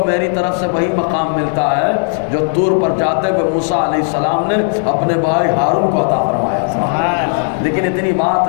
میری طرف سے وہی مقام ملتا ہے جو طور پر جاتے ہوئے موسیٰ علیہ السلام نے اپنے بھائی ہارون کو عطا فرمایا تھا۔ لیکن اتنی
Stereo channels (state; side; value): silent; right; 58 dB below the other